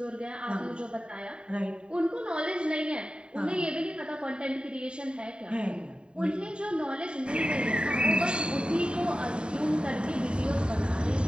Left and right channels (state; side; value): late; left; 0.051 ms